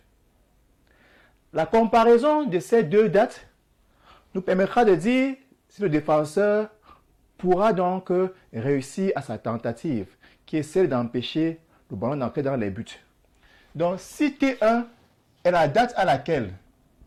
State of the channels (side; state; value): both; identical; correlation 1.00